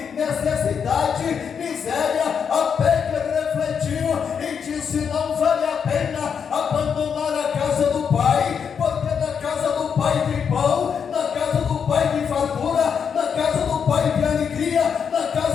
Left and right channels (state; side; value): quieter; right; 6.9 dB